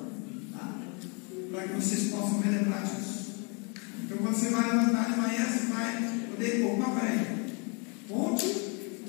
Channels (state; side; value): quieter; right; 34.1 dB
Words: tá? Para que vocês possam relembrar disso. Então, quando você vai levantar de manhã, você vai poder, opa, peraí, ponte